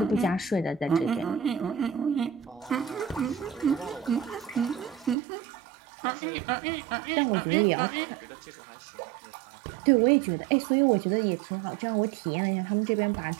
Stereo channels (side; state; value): left; drops out; at 5.2 s